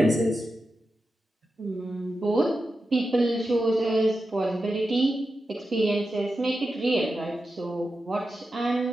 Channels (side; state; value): both; normal; correlation 0.90